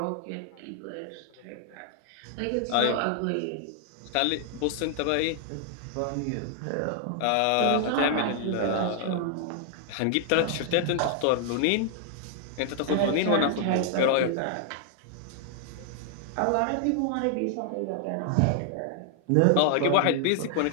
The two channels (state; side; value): different; both; correlation 0.00